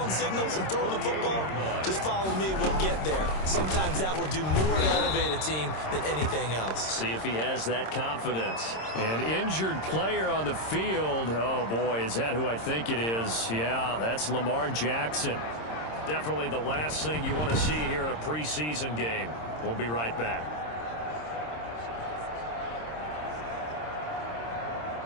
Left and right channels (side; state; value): right; late; 26 ms